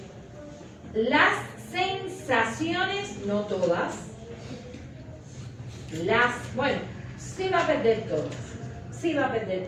las sensaciones, no todas. Bueno, sí va a perder todas. Sí va a perder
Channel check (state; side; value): identical; both; correlation 1.00